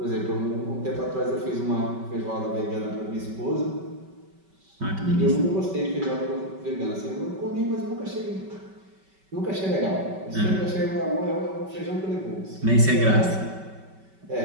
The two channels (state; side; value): late; left; 5.2 ms